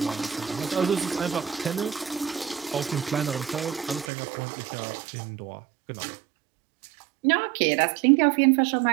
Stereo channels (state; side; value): drops out; left; at 4.0 s